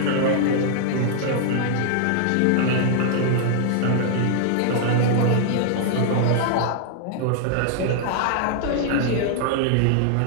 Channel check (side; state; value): both; different; correlation -0.01